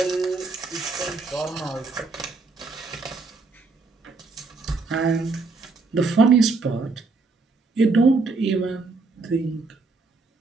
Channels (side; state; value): left; quieter; 4.0 dB